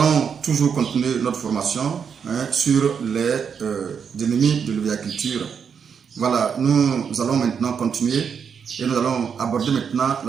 toujours continuer notre formation sur les ennemis de l'oviculture. Voilà, nous allons maintenant continuer et nous allons aborder maintenant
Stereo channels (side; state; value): left; quieter; 6.9 dB